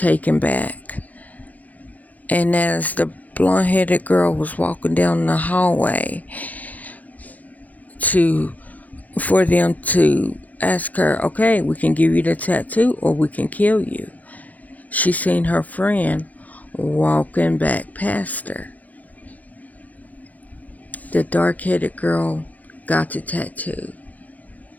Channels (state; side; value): late; right; 0.078 ms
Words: back. And as the blonde-headed girl was walking down the hallway for them to ask her, okay, we can give you the tattoo or we can kill you, she seen her friend walking back past her. The dark-headed girl got the tattoo.